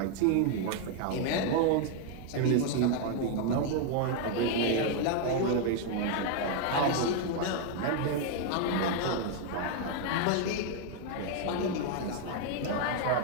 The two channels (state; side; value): different; both; correlation 0.00